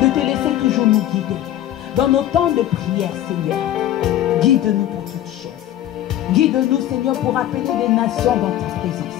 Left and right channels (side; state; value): right; quieter; 12.5 dB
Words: de te laisser toujours nous guider. Dans nos temps de prière, Seigneur, guide-nous pour toutes choses. Guide-nous, Seigneur, pour appeler des nations dans ta